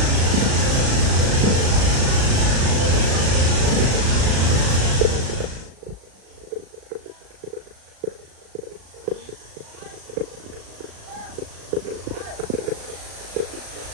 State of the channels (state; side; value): late; left; 37 ms